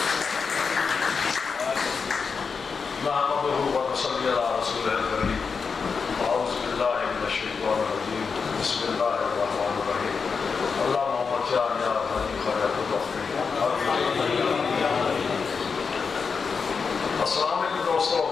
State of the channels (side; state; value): right; quieter; 5.4 dB